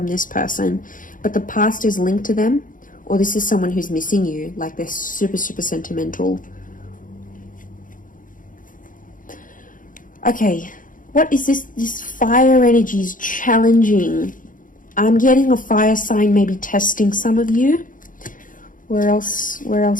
this person. But the past is linked to them, or this is someone who's missing you, like they're super, super sentimental. Okay, what is this? This fire energy is challenging. I'm getting a fire sign maybe testing some of you. Where else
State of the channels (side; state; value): right; late; 0.39 ms